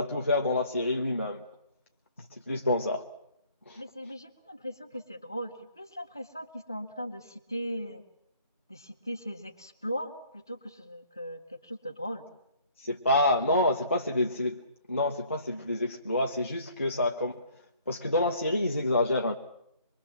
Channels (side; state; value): both; inverted; correlation -0.58